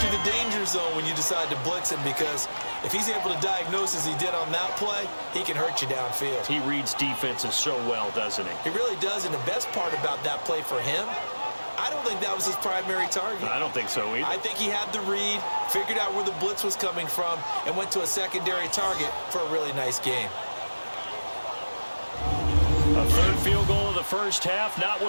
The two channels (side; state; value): both; inverted; correlation -1.00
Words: the danger zone when you decide to blitz him, because if he's able to diagnose as he did on that play, he can hurt you downfield. He reads defenses so well, doesn't he? He really does, and the best part about that play for him, I don't think that was his primary target. I don't think so either. I think he had the read, figured out where the blitz was coming from, and went to a secondary target for a really nice game. A 3rd field goal of the first half, not